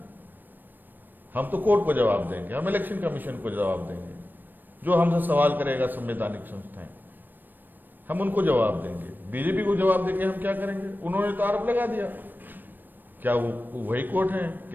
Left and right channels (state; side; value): late; left; 0.091 ms